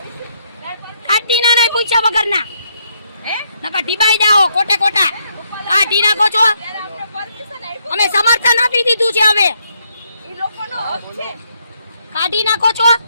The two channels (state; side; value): inverted; both; correlation -0.75